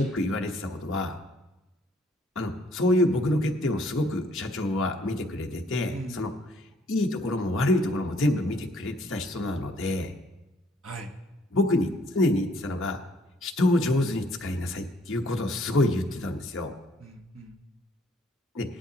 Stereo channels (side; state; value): both; normal; correlation 0.63